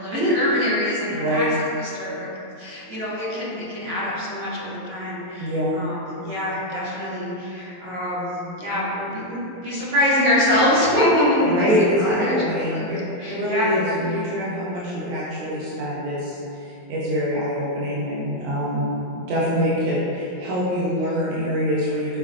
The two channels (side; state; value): left; late; 23 ms